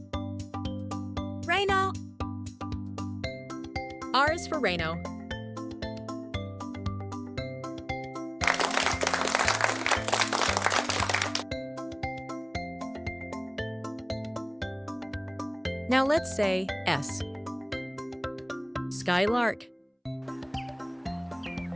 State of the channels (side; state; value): both; identical; correlation 1.00